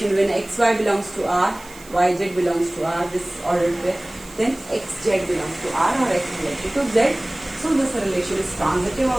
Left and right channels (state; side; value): noise; right; hiss, 21 dB below the sound